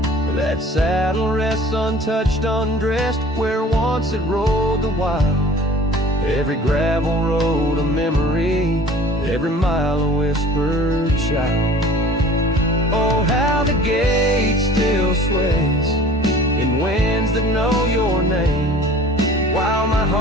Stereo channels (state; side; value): normal; both; correlation 0.46